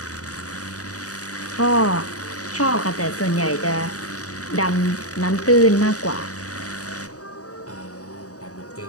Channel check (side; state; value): right; late; 0.66 ms